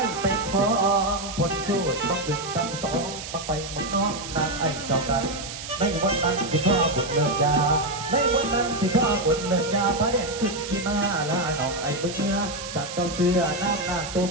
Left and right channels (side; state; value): right; noise; hiss, 10 dB below the sound